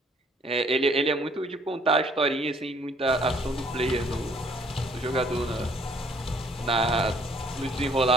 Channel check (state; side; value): normal; both; correlation 0.61